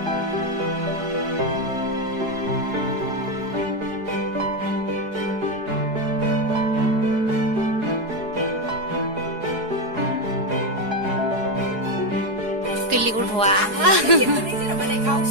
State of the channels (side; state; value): left; late; 4.7 ms